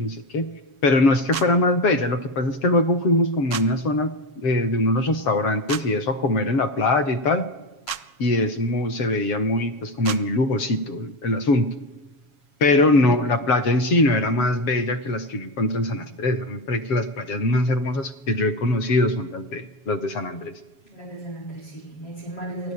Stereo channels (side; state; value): right; late; 7.3 ms